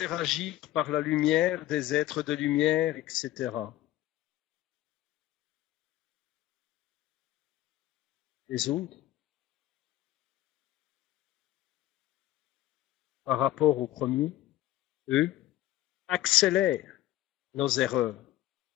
par la lumière des êtres de lumière, etc. Les autres, par rapport aux premiers, eux, accélèrent nos erreurs.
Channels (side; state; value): right; quieter; 14.5 dB